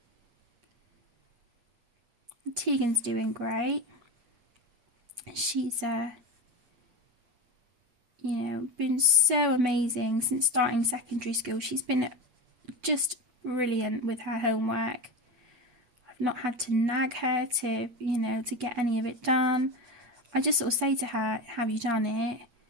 Tegan's doing great. She's, been so amazing since starting secondary school. She's been just brilliant with her homework. I've not had to nag her to get any of it done. I just sort of say to her, have you done it?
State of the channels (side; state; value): left; late; 8.5 ms